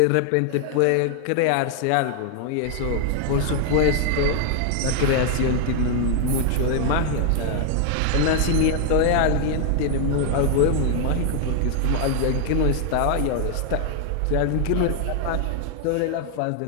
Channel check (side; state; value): both; different; correlation 0.00